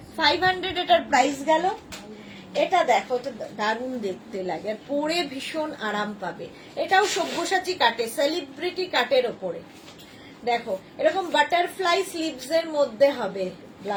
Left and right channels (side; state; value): both; identical; correlation 1.00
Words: 500 এটার প্রাইস গেল। এটা দেখো, এটা দারুণ দেখতে লাগে আর পরে ভীষণ আরাম পাবে। এটাও সব্যসাচী কাটে, সেলিব্রিটি কাটের ওপরে। দেখো এরকম বাটারফ্লাই স্লিভস এর মধ্যে হবে